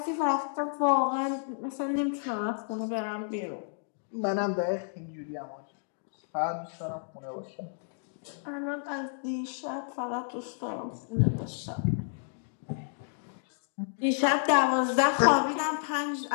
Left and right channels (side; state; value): right; silent; digital silence